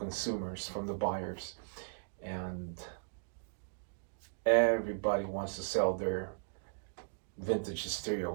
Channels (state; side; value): silent; left; digital silence